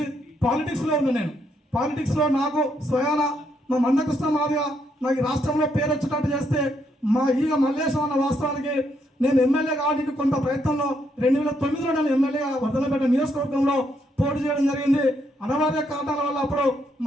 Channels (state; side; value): normal; both; correlation 0.75